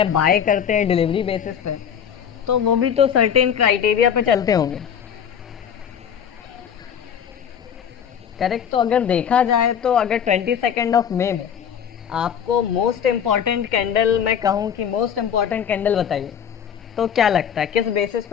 बाय करते हैं डिलीवरी बेसिस पे, तो वो भी तो सर्टेन क्राइटेरिया पे चलते होंगे करेक्ट। तो अगर देखा जाए तो अगर 22 मई में आपको मोस्ट इम्पॉर्टेंट कैंडल, मैं कहूँ कि मोस्ट इम्पॉर्टेंट कैंडल बताइए, तो क्या लगता है किस बेसिस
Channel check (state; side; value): quieter; right; 8.2 dB